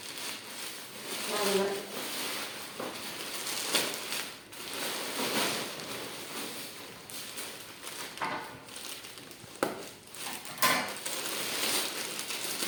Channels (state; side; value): identical; both; correlation 1.00